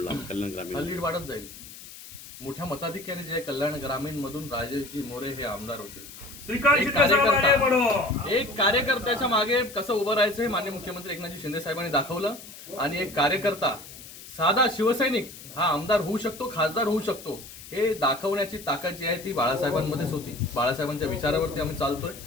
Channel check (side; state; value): left; noise; hiss, 16 dB below the sound